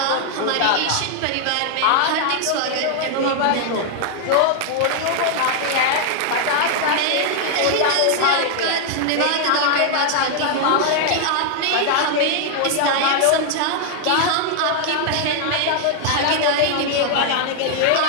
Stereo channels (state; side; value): different; both; correlation 0.00